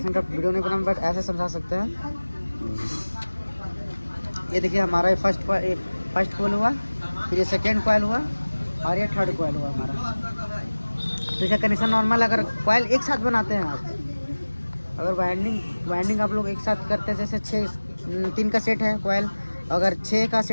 का वीडियो नहीं बना, बट ऐसे समझा सकते हैं। ये देखिए हमारा ये फर्स्ट कॉइल हुआ, फिर ये सेकेंड कॉइल हुआ और ये थर्ड कॉइल हुआ हमारा। तो इसका कनेक्शन नॉर्मल, अगर कॉइल एक साथ बनाते हैं आप, अगर वाइंडिंग आप लोग एक साथ करते हैं, जैसे 3 का सेट है कॉइल, अगर 6 का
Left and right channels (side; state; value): both; inverted; correlation -1.00